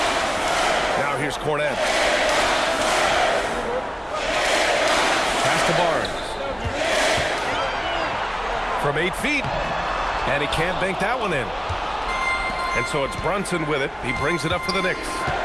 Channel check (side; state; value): both; identical; correlation 1.00